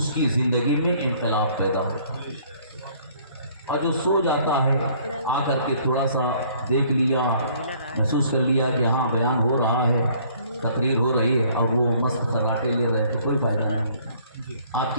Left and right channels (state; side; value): inverted; both; correlation -0.59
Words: کی زندگی میں انقلاب پیدا ہوتا ہے، اور جو سو جاتا ہے آ کر کے تھوڑا سا دیکھ لیا، محسوس کر لیا کہ ہاں بیان ہو رہا ہے، تقریر ہو رہی ہے، اور وہ مست خراٹے لے رہے ہیں، تو کوئی فائدہ نہیں، آپ